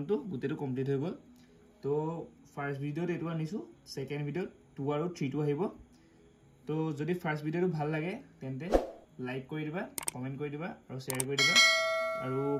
টো গোটেইটো কমপ্লিট হৈ গ'ল তো ফাৰ্ষ্ট ভিডিঅ'ত এইটো আনিছোঁ ছেকেণ্ড ভিডিঅ'ত 2 আৰু 3 টো আহিব তো যদি ফাৰ্ষ্ট ভিডিঅ'টো ভাল লাগে তেন্তে লাইক কৰি দিবা কমেণ্ট কৰি দিবা আৰু শ্বেয়াৰ কৰি দিবা আৰু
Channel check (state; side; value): identical; both; correlation 1.00